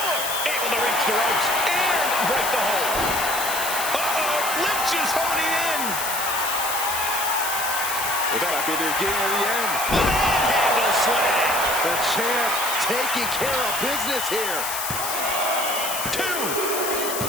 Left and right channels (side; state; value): left; noise; hiss, 3 dB below the sound